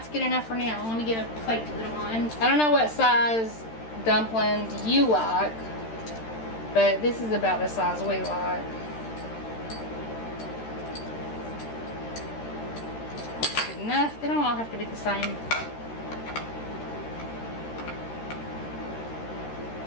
good enough for now. Let me get a plate to put them on. I don't know what size dumplings you like, but this is about the size we like. Good enough. They don't all have to be the same.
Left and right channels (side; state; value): right; late; 13 ms